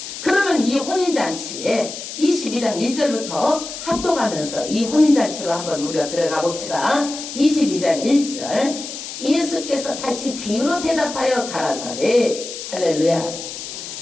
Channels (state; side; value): noise; left; hiss, 9 dB below the sound